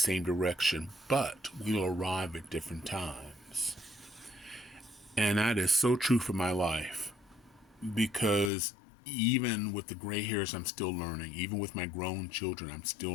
direction, but we'll arrive at different times. And that is so true for my life, because even with the gray hairs, I'm still learning. Even with my grown children, I'm still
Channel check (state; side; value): drops out; right; at 8.5 s